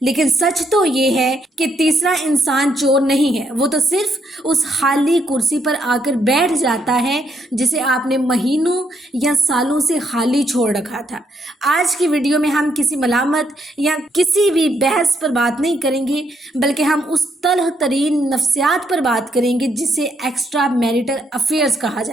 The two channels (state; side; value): normal; both; correlation 0.75